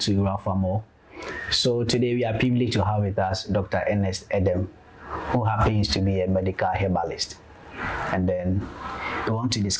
Rafamall. So today we are privileged to have with us Dr. Ernest Edem, who happens to be a medical herbalist. And then we want to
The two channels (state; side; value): identical; both; correlation 1.00